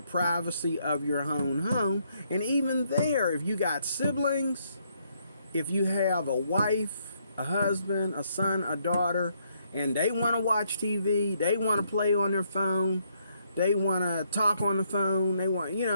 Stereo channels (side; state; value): both; inverted; correlation -0.73